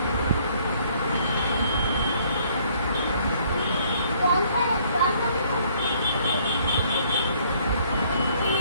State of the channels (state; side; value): inverted; both; correlation -0.63